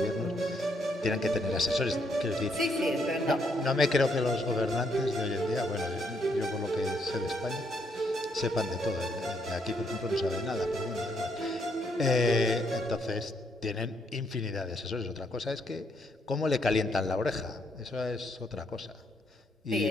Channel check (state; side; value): normal; both; correlation 0.73